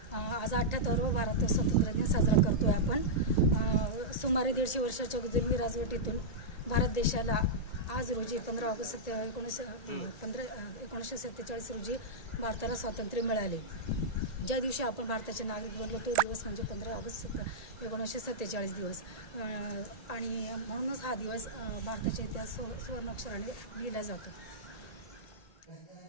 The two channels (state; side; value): late; right; 1.8 ms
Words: आज 78वा भारत स्वातंत्र्य दिन साजरा करतोय आपण। सुमारे 150 वर्षाच्या जुलमी राजवटीतून भारत देशाला आज रोजी 15 ऑगस्ट 1947 रोजी भारताला स्वातंत्र्य मिळाले। ज्या दिवशी आपण भारताचे नागरिक बनलो तो दिवस म्हणजे 15 ऑगस्ट 1947 दिवस आणि म्हणूनच हा दिवस भारताच्या इतिहास सुवर्णाक्षराने लिहिला जातो।